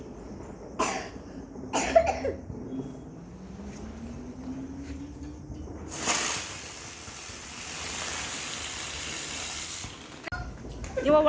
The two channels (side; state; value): both; identical; correlation 1.00